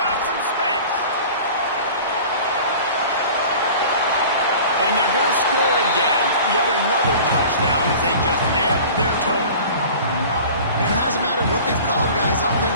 some space. And they're going to score again. Yet another touchdown as they just add to their total. And it hasn't mattered what they've called, guys,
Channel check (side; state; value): both; inverted; correlation -0.41